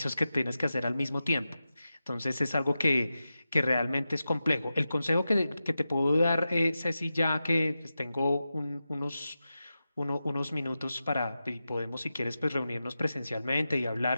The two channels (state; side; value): inverted; both; correlation -0.92